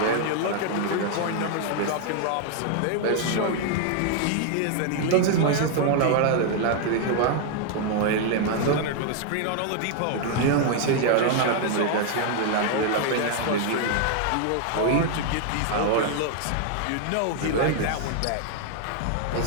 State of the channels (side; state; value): both; different; correlation 0.00